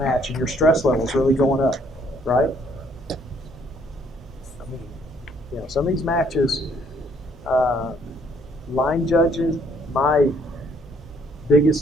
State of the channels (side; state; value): both; normal; correlation 0.65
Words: and your stress level is really going up, right? I mean, some of these matches, line judges, my